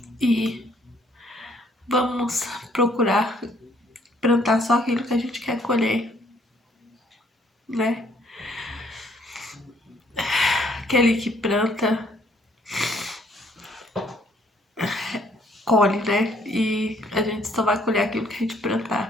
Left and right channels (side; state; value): both; normal; correlation 0.65